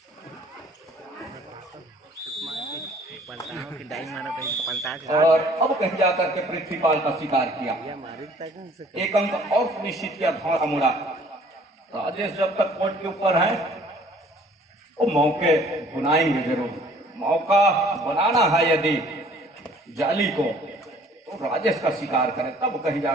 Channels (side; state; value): both; normal; correlation 0.55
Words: और अब कहीं जा करके पृथ्वीपाल का शिकार किया, 1 अंक और सुनिश्चित किया, धौरा मुड़ा। राजेश जब तक कोर्ट के ऊपर है वो मौके बुनाएंगे जरूर, मौका बनाना है यदि जाली को तो राजेश का शिकार करें, तब कहीं